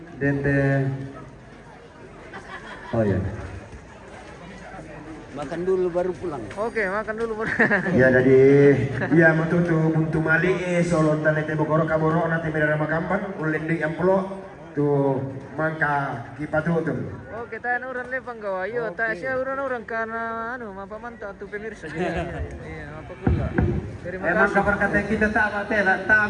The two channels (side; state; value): both; identical; correlation 1.00